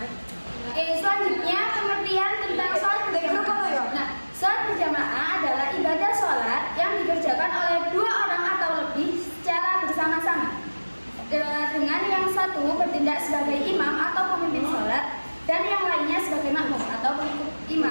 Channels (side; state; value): both; inverted; correlation -1.00